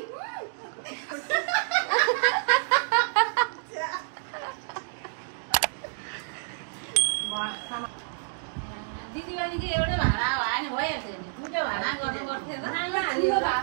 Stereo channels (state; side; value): silent; left; digital silence